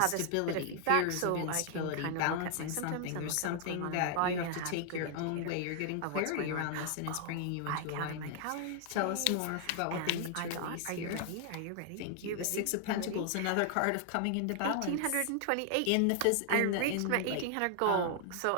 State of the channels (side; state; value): both; different; correlation 0.00